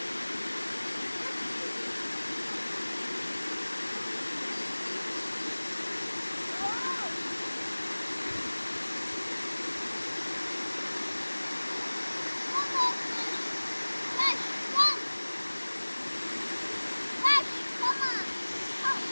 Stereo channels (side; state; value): both; inverted; correlation -1.00